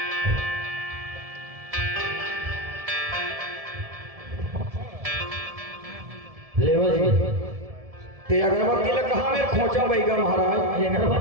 लेवा जी। ते अगरबत्ती ला कहाँ में खोचा बैगम महाराज? ये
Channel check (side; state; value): left; late; 1.7 ms